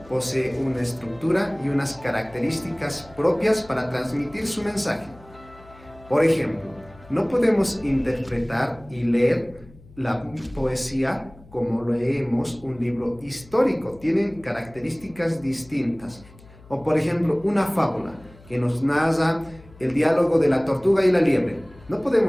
posee una estructura y unas características propias para transmitir su mensaje. Por ejemplo, no podemos interpretar y leer la poesía como leemos un libro histórico. Tienen características distintas. O por ejemplo, una fábula que nos narra el diálogo de la tortuga y la liebre. No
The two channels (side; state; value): left; noise; hum, 23 dB below the sound